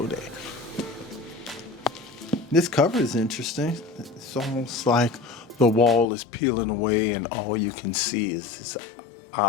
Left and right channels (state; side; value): drops out; right; at 6.1 s